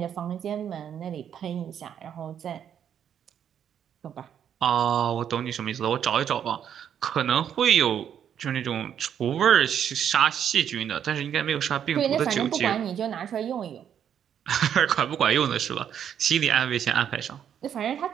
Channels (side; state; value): left; quieter; 9.0 dB